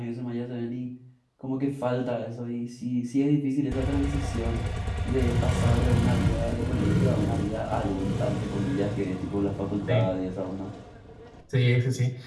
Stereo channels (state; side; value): identical; both; correlation 1.00